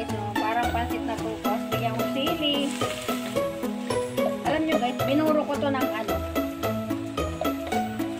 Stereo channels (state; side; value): identical; both; correlation 1.00